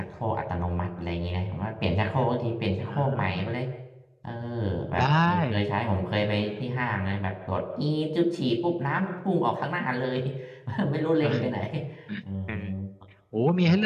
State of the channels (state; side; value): identical; both; correlation 1.00